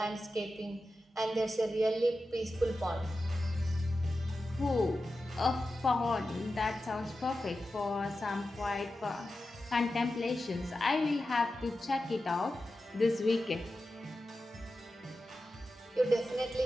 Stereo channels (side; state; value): both; normal; correlation 0.92